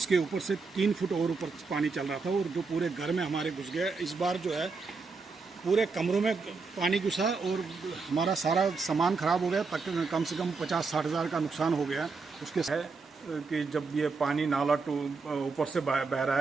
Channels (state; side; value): quieter; left; 4.4 dB